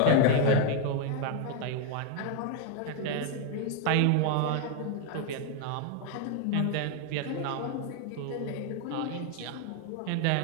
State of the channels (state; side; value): different; both; correlation 0.00